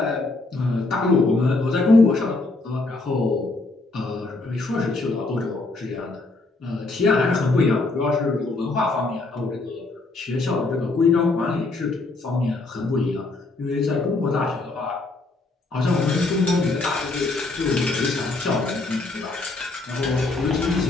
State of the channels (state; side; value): quieter; right; 3.3 dB